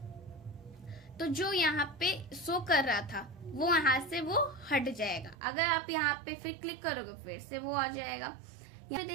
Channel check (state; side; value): drops out; left; at 5.4 s